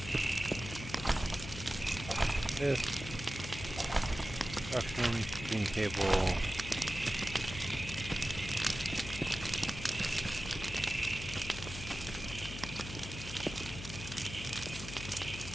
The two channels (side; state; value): left; noise; hum, 10 dB below the sound